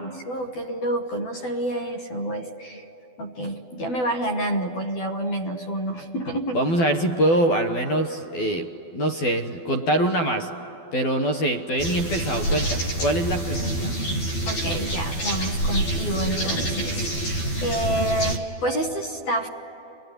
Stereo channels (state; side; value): late; right; 12 ms